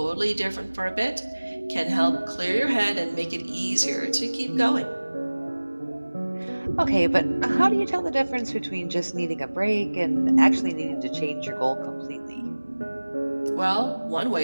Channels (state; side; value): inverted; both; correlation -1.00